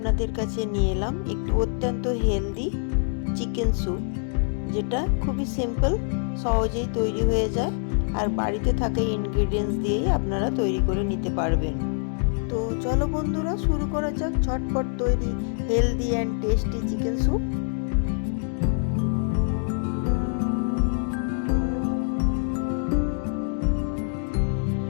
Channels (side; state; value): right; silent; 62 dB below the other